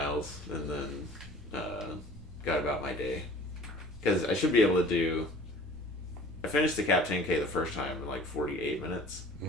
and then got about my day. Because I should be able to do... I finished the Cab 10K the first time in like 48 minutes.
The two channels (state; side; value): normal; both; correlation 0.47